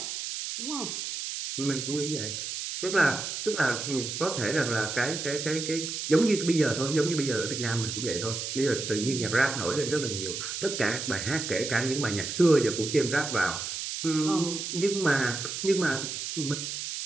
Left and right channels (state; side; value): noise; right; hiss, 5 dB below the sound